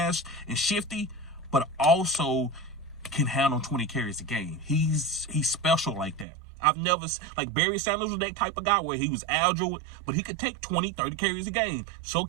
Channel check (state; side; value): drops out; left; at 6.2 s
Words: and shifty, but also can handle 20 carries a game. He's special like that. I've never, like Barry Sanders was that type of guy where he was agile, but he could take 20, 30 carries a game. So